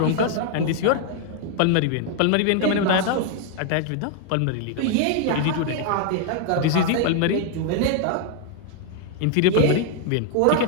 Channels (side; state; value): both; different; correlation 0.00